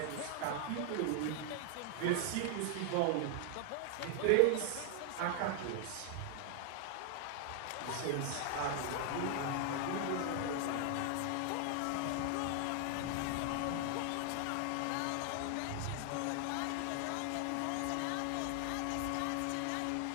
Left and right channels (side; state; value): both; different; correlation 0.00